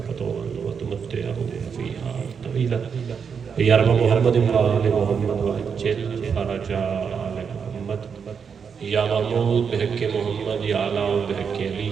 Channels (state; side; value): quieter; left; 6.5 dB